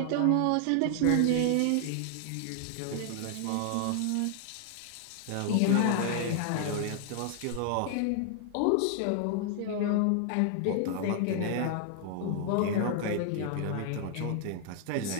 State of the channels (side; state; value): both; different; correlation 0.00